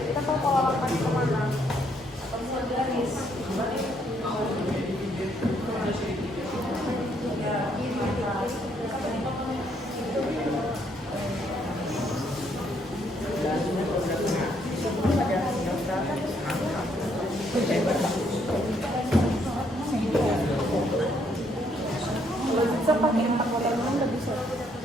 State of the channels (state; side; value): normal; both; correlation 0.70